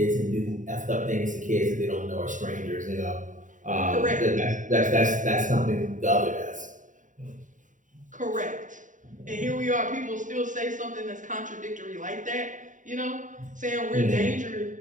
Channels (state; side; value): late; left; 0.37 ms